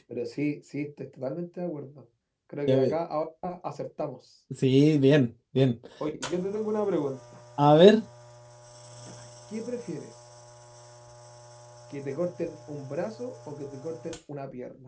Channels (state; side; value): identical; both; correlation 1.00